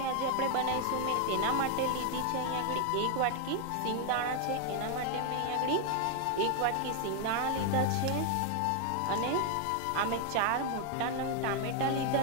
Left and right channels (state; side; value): different; both; correlation 0.00